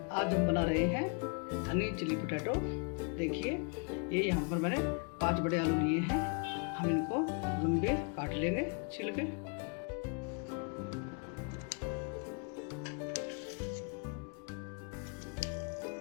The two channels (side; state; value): right; quieter; 38.1 dB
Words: आज हम बना रहे हैं हनी चिली पोटैटो। देखिए, ये यहाँ पर मैंने 5 बड़े आलू लिए हैं। हम इनको लंबे काट लेंगे छील के।